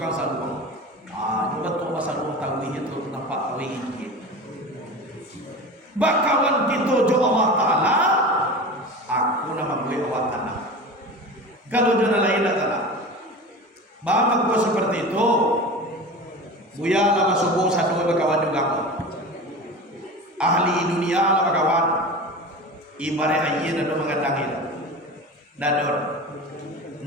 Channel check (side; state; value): both; normal; correlation 0.32